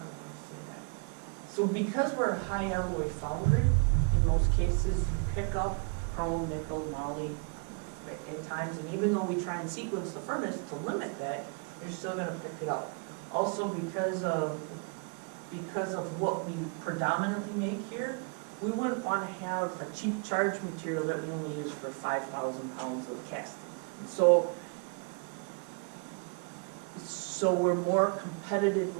want to say that. So because we're a high alloy foundry, in most cases you pick up chrome, nickel, moly at times, and even though we try and sequence the furnace to limit that, you're still going to pick it up. Also because of what we predominantly make here, we wouldn't want to have a cheap charge material that we only use for 5,000 pounds of castings. And so we're more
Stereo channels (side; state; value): left; quieter; 33.8 dB